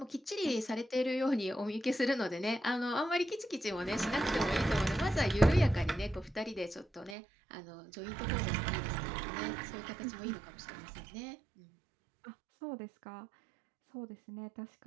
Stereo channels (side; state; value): left; drops out; at 7.2 s